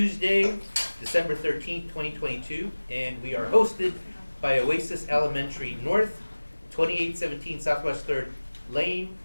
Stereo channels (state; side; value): inverted; both; correlation -1.00